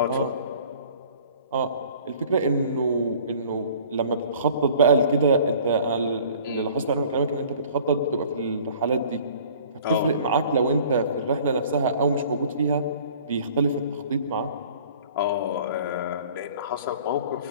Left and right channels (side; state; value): both; inverted; correlation -0.50